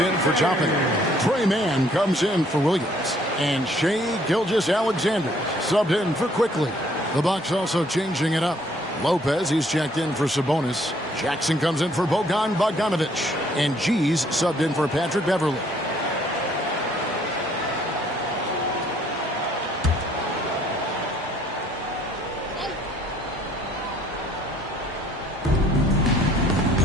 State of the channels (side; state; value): both; normal; correlation 0.62